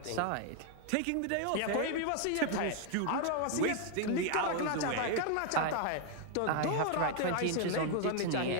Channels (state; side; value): different; both; correlation 0.00